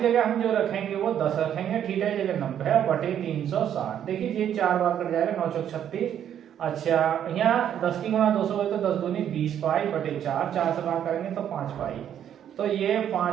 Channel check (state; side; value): quieter; left; 9.8 dB